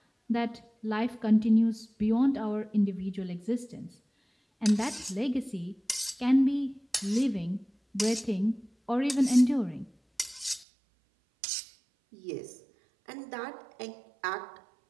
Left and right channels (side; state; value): left; drops out; at 10.7 s